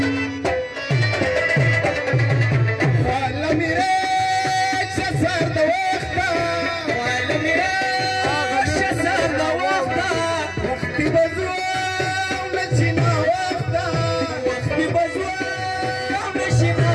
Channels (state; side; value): identical; both; correlation 1.00